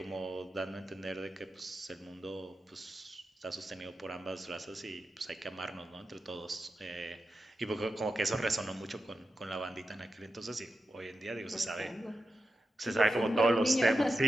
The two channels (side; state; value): both; normal; correlation 0.89